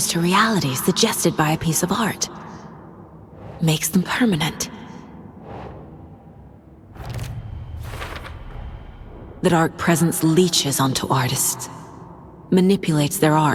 to reality suggested by a piece of art. Makes them permanent. The dark presence leeches onto artists. Manipulates their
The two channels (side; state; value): both; identical; correlation 1.00